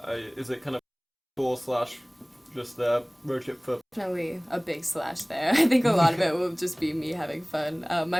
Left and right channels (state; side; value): identical; both; correlation 1.00